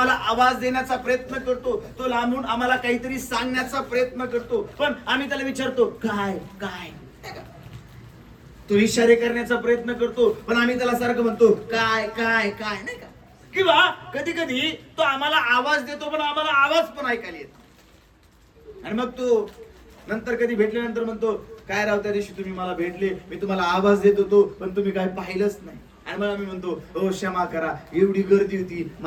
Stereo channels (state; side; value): identical; both; correlation 1.00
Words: आवाज देण्याचा प्रयत्न करतो, तो लांबून आम्हाला काहीतरी सांगण्याचा प्रयत्न करतो, पण आम्ही त्याला विचारतो काय काय. तो इशारे करण्याचा प्रयत्न करतो, पण आम्ही त्याला सारखं म्हणतो काय काय काय नाही का. किंवा कधी कधी तो आम्हाला आवाज देतो, पण आम्हाला आवाज पण ऐकायला येतो. आणि मग तो नंतर कधी भेटल्यानंतर म्हणतो काय राव, त्या दिवशी तुम्ही मला भेटले, मी तुम्हाला आवाज देत होतो, पण तुम्ही काय पाहिलंच नाही. आणि मग आम्ही म्हणतो हो क्षमा करा, एवढी गर्दी होती,